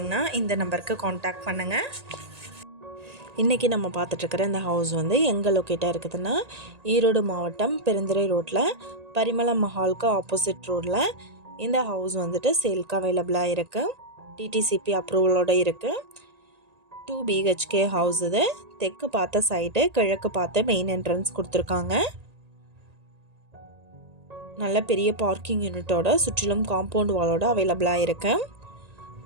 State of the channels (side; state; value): left; late; 1.8 ms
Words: இந்த நம்பருக்கு காண்டாக்ட் பண்ணுங்கள். இன்றைக்கி நம்ம பார்த்துட்ருக்கிற இந்த ஹவுஸ் வந்து எங்கே லொக்கேட்டாக இருக்குதுன்னா, ஈரோடு மாவட்டம் பெருந்துறை ரோட்டில் பரிமளம் மஹாலுக்கு ஆப்போசிட் ரோடில் இந்த ஹவுஸ் வந்துட்டு சேல்க்கு அவைலபிளாக இருக்குது. டிடிசிபி அப்ரூவலோடு இருக்குது. 2 BHK ஹவுஸ். இது தெற்கு பார்த்த சைடு, கிழக்கு பார்த்த மெயின் என்ட்ரன்ஸ் கொடுத்துருக்காங்க. நல்ல பெரிய பார்க்கிங் யூனிட்டோட சுற்றிலும் காம்பவுண்ட் வாலோட அவைலபிளாக இருக்கு.